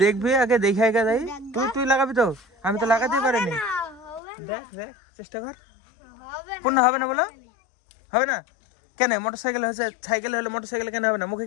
দেখবি আগে, দেখে আগে যাই। তুই লাগাবি তো? আমি তো লাগাতেই পারিনি। না হবে দেখ দেখ চেষ্টা কর। হবে পূর্ণ হবে না বলো? হবে না কেন? মোটর সাইকেল হয়েছে, সাইকেল হলে মোটর সাইকেল কেন হবে না? মুখে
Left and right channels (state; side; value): drops out; right; at 4.2 s